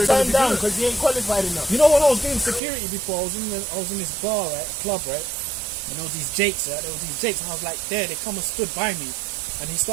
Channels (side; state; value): left; drops out; at 2.6 s